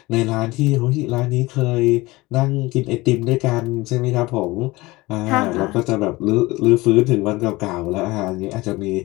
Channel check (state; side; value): quieter; right; 20.9 dB